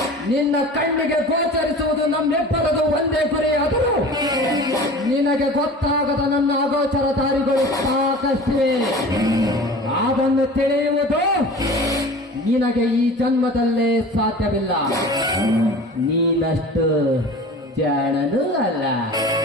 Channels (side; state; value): both; normal; correlation 0.39